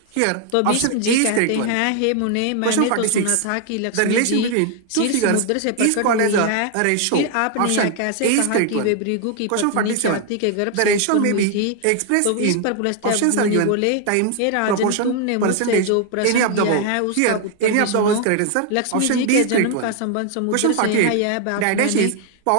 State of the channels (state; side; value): different; both; correlation 0.00